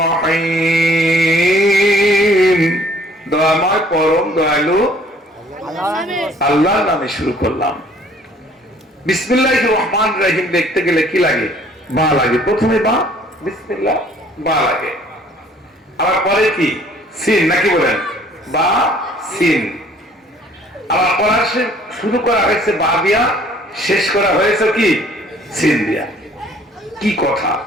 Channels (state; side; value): normal; both; correlation 0.57